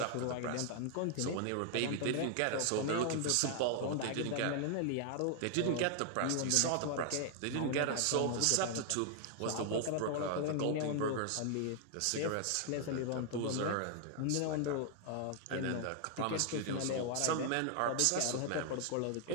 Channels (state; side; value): different; both; correlation 0.00